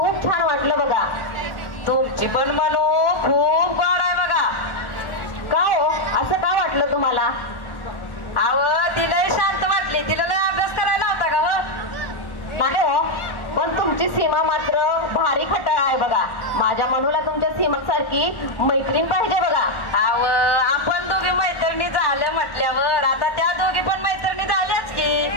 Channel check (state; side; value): late; right; 1.4 ms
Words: छान वाटलं बघा। तुमची पण मनू खूप गोड आहे बघा। का हो, असं का वाटलं तुम्हाला? अव तिला शांत वाटली, तिला लय अभ्यास करायला होता का हो? नाही हो, पण तुमची सीमा मात्र भारी खटाळ आहे बघा। माझ्या मनूला तुमच्या सीमा सारखी मैत्रीण पाहिजे बघा। अव आपण दोघी मैत्रिणी झाल्या म्हटल्यावर आता त्या दोघी पण मैत्रिणी झाल्याच